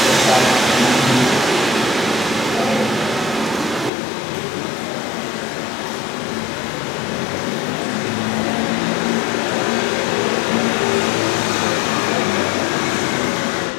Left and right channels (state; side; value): drops out; right; at 3.9 s